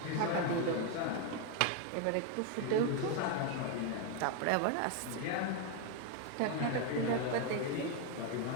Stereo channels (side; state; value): both; different; correlation 0.01